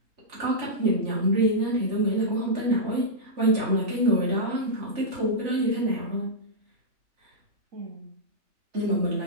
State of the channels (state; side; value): late; left; 3.4 ms